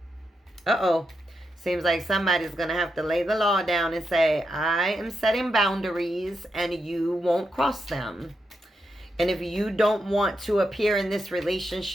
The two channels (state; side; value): normal; both; correlation 0.85